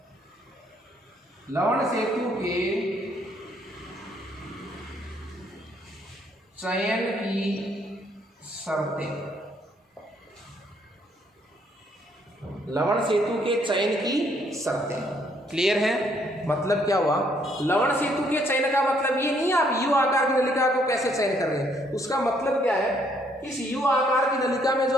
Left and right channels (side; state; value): both; normal; correlation 0.68